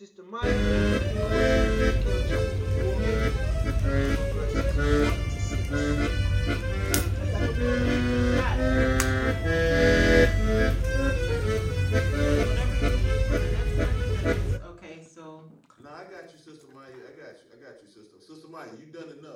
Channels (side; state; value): both; identical; correlation 1.00